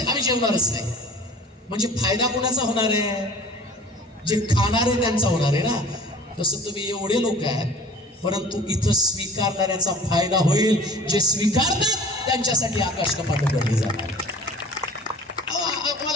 आम्ही जेवणारच नाही. म्हणजे फायदा कोणाचा होणार आहे? जे खाणारे त्यांचा होणार आहे ना. तसं तुम्ही एवढे लोक आहेत, परंतु इथं स्वीकारणाऱ्याचा फायदा होईल. जे स्वीकारतात त्यांच्यासाठी आकाश कपाट उघडली जाणार.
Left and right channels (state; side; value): normal; both; correlation 0.44